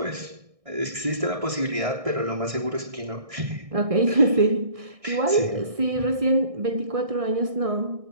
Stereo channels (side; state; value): left; late; 1.6 ms